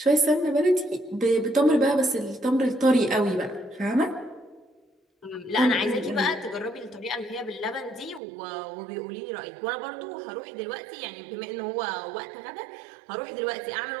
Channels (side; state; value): left; drops out; at 8.2 s